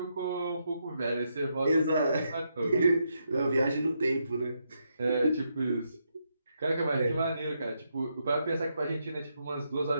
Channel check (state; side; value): inverted; both; correlation -0.80